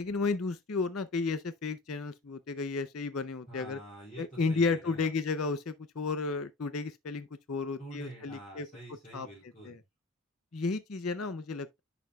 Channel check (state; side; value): quieter; right; 3.6 dB